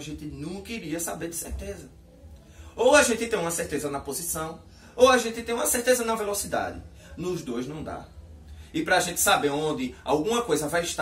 gente nunca iria saber de certeza. Ou a gente tem uma certeza na posição, ou a gente tem uma certeza na velocidade. Nos dois não dá. E para a gente saber onde alguma coisa vai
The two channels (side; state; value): both; identical; correlation 1.00